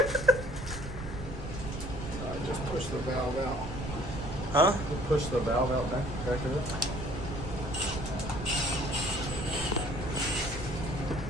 Just push the valve out. Huh? Push the valve out back of it.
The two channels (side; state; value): right; noise; rumble, 8 dB below the sound